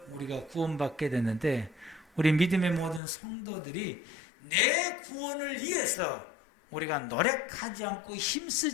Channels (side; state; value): right; drops out; at 3.0 s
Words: 우리가 구원받게 됐는데 우리 믿음의 모든 성도들이 내 구원을 위해서 우리가 노력하지 않고